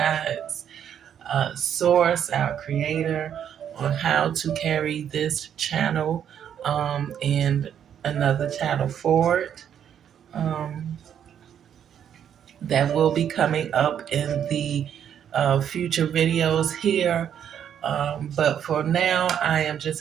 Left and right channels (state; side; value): quieter; left; 9.1 dB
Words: source, our creator, on how to carry this channel and another channel forward. Um, that will be coming up in the future videos here. But for now, I am